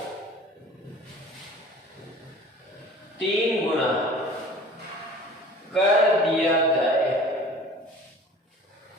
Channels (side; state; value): both; normal; correlation 0.45